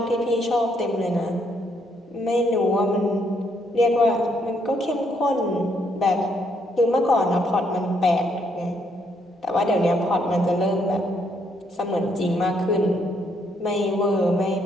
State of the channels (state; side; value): normal; both; correlation 0.72